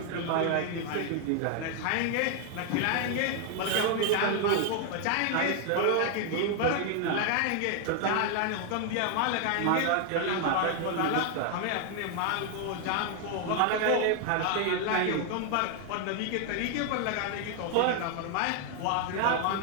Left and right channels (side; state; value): both; different; correlation 0.00